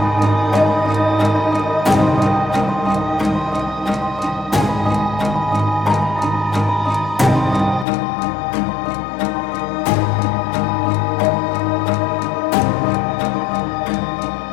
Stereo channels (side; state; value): right; drops out; at 7.9 s